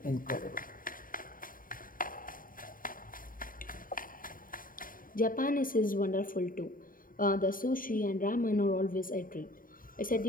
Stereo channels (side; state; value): right; late; 0.40 ms